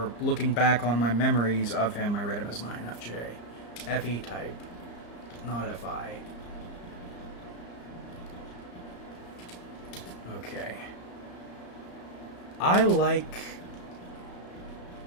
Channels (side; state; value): right; late; 34 ms